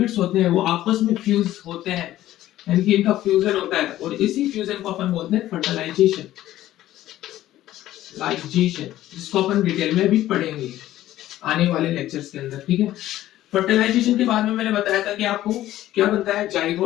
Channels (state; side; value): quieter; right; 14.1 dB